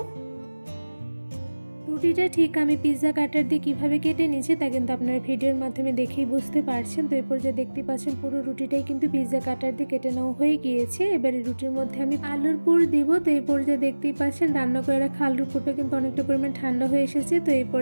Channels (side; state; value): both; inverted; correlation -1.00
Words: রুটিটা ঠিক আমি পিৎজা কাটার দিয়ে কীভাবে কেটে নিয়েছি তা কিন্তু আপনারা ভিডিওর মাধ্যমে দেখেই বুঝতে পারছেন। তো এরপর যে দেখতে পাচ্ছেন পুরো রুটিটাই কিন্তু পিৎজা কাটার দিয়ে কেটে নেওয়া হয়ে গিয়েছে। এবারে রুটির মধ্যে আমি আলুর পুর দিব। তো এই পর্যায়ে দেখতেই পাচ্ছেন রান্না করে রাখা আলুর পুরটা কিন্তু অনেকটা পরিমাণ ঠান্ডা হয়ে এসেছে। তো এই